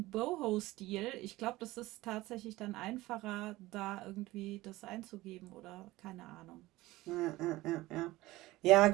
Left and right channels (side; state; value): left; quieter; 18.6 dB